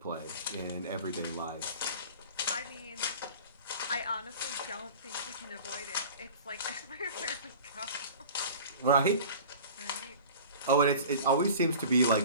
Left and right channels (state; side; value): inverted; both; correlation -0.40